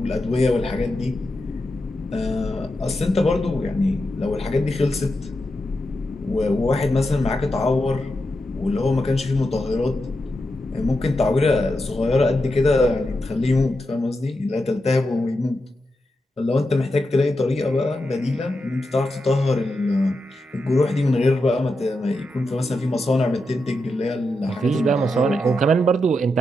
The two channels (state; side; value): normal; both; correlation 0.87